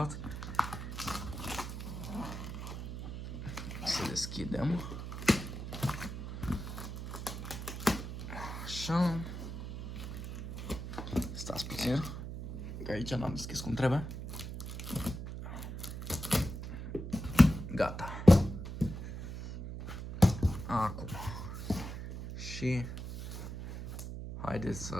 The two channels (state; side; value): noise; right; hum, 7 dB below the sound